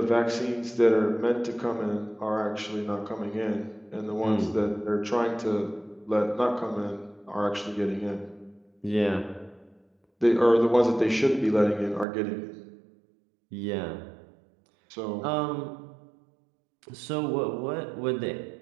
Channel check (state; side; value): drops out; left; at 12.1 s